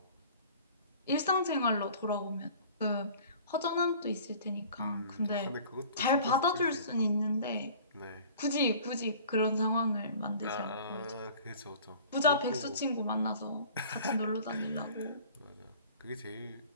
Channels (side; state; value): both; inverted; correlation -0.47